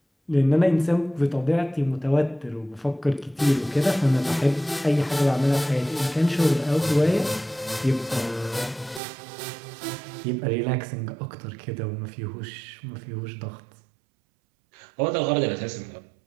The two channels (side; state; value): left; drops out; at 9.0 s